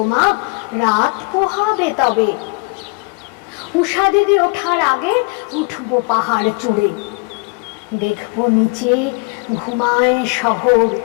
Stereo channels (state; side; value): quieter; right; 30.4 dB